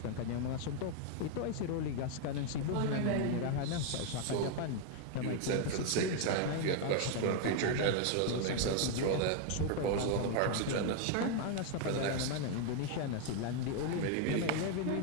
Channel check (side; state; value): both; different; correlation 0.00